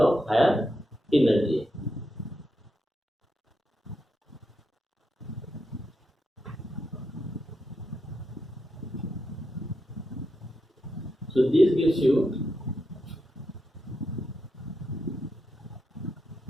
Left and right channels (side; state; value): both; normal; correlation 0.84